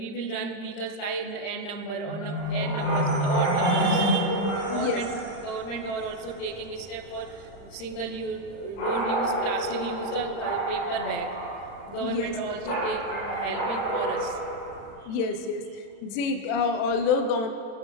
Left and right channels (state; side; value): late; right; 35 ms